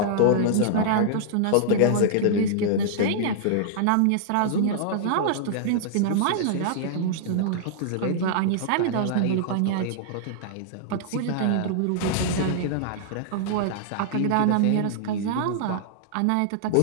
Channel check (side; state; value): both; different; correlation -0.01